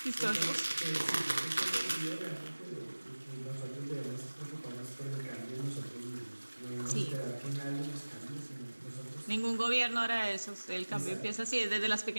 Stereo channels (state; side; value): inverted; both; correlation -1.00